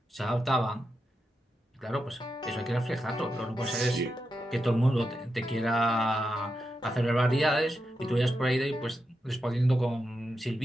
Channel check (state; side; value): normal; both; correlation 0.87